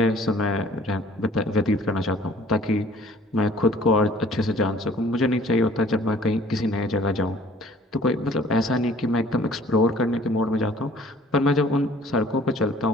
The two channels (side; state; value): both; normal; correlation 0.53